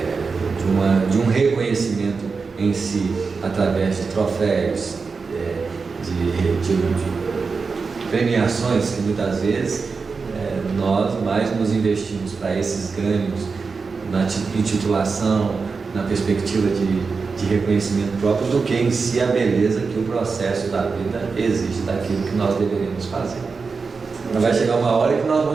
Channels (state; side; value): quieter; left; 4.8 dB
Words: de um reconhecimento em si, através de troféus, de premiações que muitas vezes nós mais nos investimos para esses ganhos na intitulação, na perspectiva de reconhecimento próprio, do que em si a beleza que o processo da vida exige daquilo que nós deveríamos fazer. Então vai chegar uma hora que nós